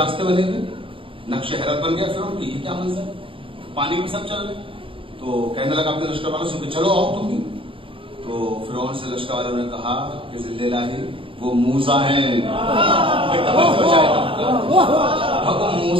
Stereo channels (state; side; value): late; left; 0.25 ms